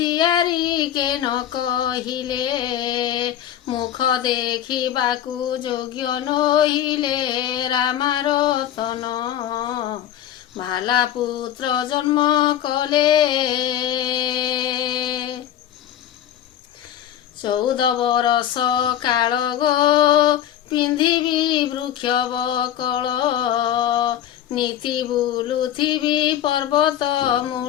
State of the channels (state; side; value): quieter; right; 11.1 dB